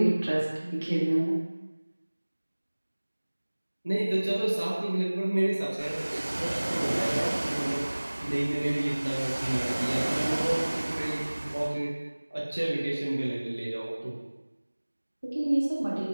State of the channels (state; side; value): inverted; both; correlation -1.00